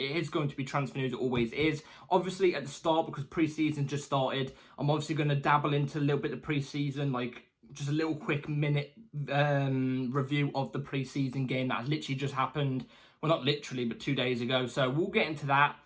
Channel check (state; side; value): identical; both; correlation 1.00